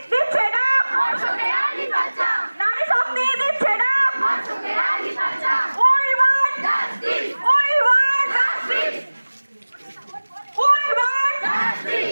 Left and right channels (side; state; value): both; inverted; correlation -1.00